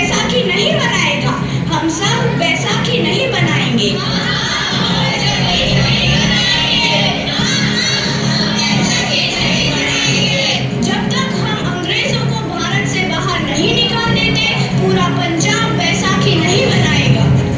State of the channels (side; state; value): both; identical; correlation 1.00